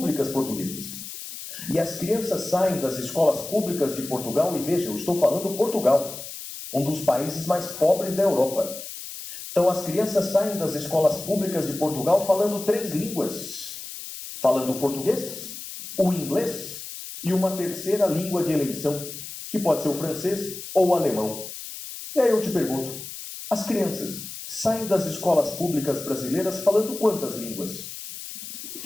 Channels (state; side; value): noise; left; hiss, 10 dB below the sound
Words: portuguesas. E as crianças saem das escolas públicas de Portugal, e veja, eu estou falando Portugal, um dos países mais pobres da Europa. Então as crianças saem das escolas públicas de Portugal falando 3 línguas. Falando o português, o inglês e uma terceira língua de eleição, que pode ser o francês ou o alemão. E aí eu te pergunto, as crianças saem das escolas públicas brasileiras falando quantas línguas?